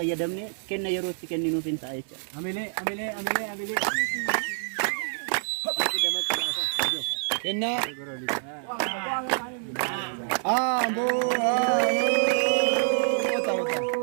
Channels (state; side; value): silent; left; 60 dB below the other